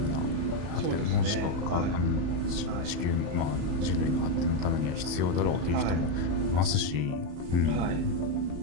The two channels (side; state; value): left; late; 34 ms